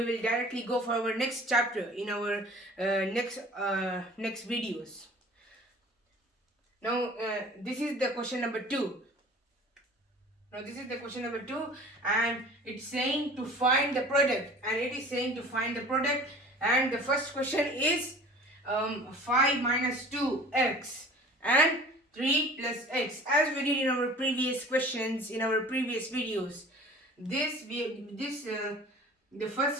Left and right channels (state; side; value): normal; both; correlation 0.45